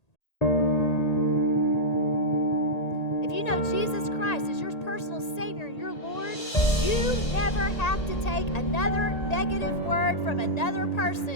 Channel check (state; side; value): late; right; 1.8 ms